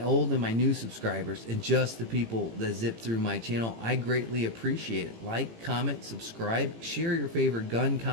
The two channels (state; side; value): late; left; 18 ms